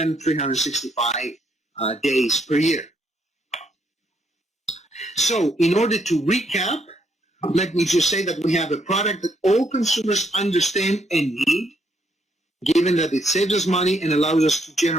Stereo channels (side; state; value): both; normal; correlation 0.73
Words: 365 days per year. So in order to recap, let me just say that we have a product that all consumers understand and need, given that it saves us money and allows us to